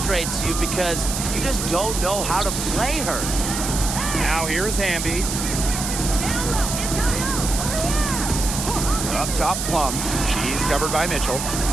you because you just don't know how to play her. Now here's Hamby. Up top, Plum. She's covered by Mitchell.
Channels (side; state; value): right; noise; hiss, 4 dB below the sound